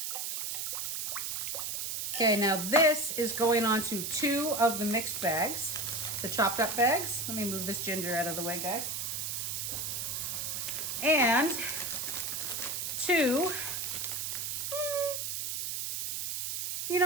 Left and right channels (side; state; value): right; noise; hiss, 2 dB below the sound